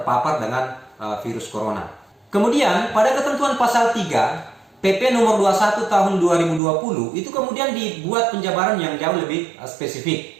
dengan virus corona. Kemudian pada ketentuan pasal 3 PP nomor 21 tahun 2020 itu kemudian dibuat penjabaran yang jauh lebih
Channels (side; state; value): left; drops out; at 6.6 s